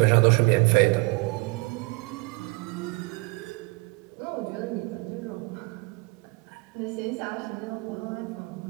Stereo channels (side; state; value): left; quieter; 26.7 dB